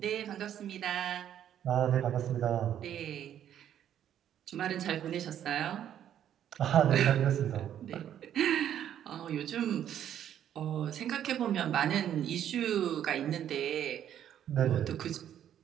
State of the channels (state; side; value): quieter; left; 10.3 dB